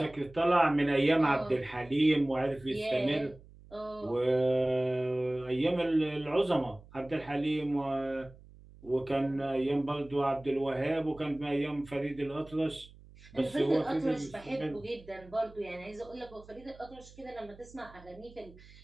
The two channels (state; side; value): noise; right; hum, 22 dB below the sound